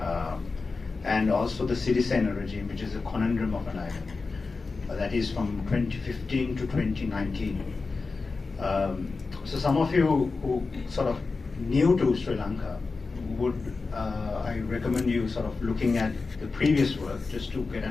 and also the Sirisena regime, which is a conundrum of an island. That is from 2015 to 2019. So some of you who sort of new to Sri Lanka would, I recommend you sort of looking at the previous work just to get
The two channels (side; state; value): right; quieter; 4.1 dB